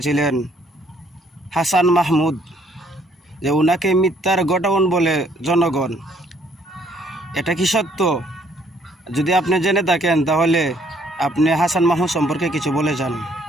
ছিলেন হাসান মাহমুদ, যে উনাকে মিথ্যার গোডাউন বলে জনগণ। এটা কি সত্য? যদি আপনি জেনে থাকেন তাহলে আপনি হাসান মাহমুদ সম্পর্কে কিছু বলে যান।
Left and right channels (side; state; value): both; normal; correlation 0.65